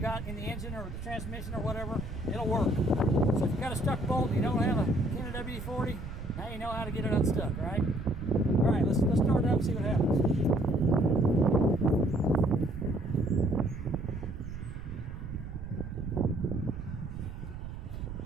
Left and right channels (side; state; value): right; noise; rumble, 9 dB below the sound